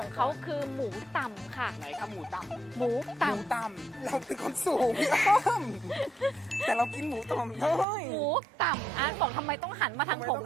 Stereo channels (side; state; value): left; drops out; at 7.9 s